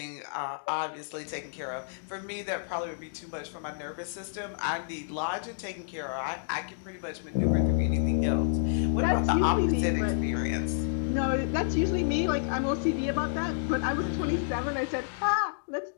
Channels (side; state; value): right; silent; digital silence